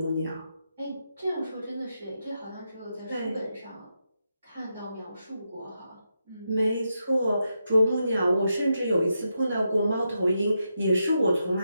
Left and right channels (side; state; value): both; inverted; correlation -0.85